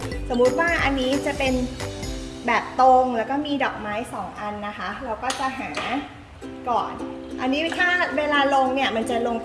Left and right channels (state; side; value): identical; both; correlation 1.00